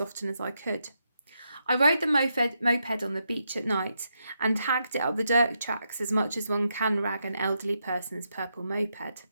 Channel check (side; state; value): both; inverted; correlation -0.83